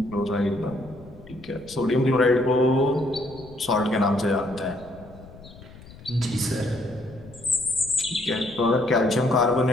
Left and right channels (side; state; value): left; noise; rumble, 19 dB below the sound